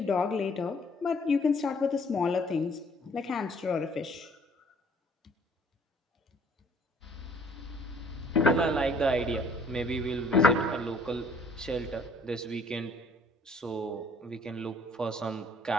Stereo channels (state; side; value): normal; both; correlation 0.59